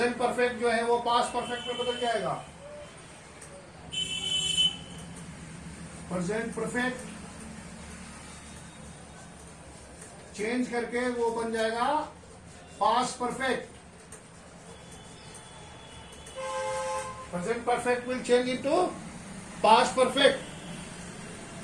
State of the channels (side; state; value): both; identical; correlation 1.00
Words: perfect जो है वो past perfect में बदल जाएगा. प्रेजेंट परफेक्ट चेंज करके वो बन जाएगा past perfect. Present perfect will change into past perfect.